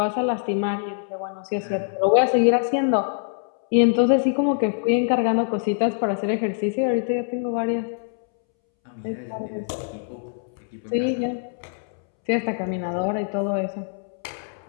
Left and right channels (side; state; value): right; silent; 63 dB below the other